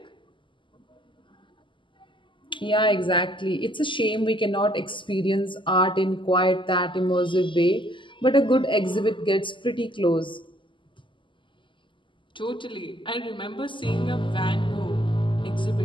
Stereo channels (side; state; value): right; late; 0.24 ms